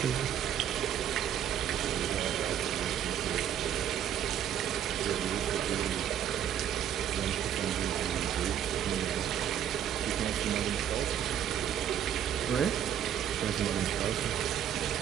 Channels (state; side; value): quieter; left; 9.8 dB